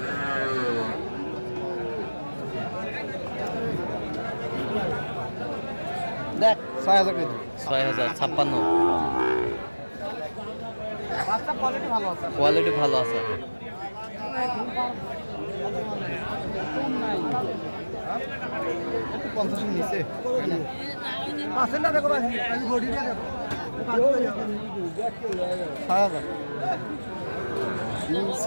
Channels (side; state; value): both; inverted; correlation -1.00